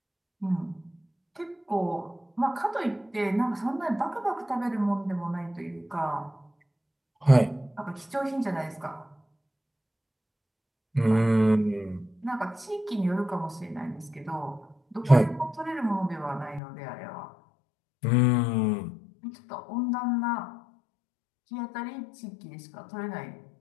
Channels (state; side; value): drops out; right; at 16.6 s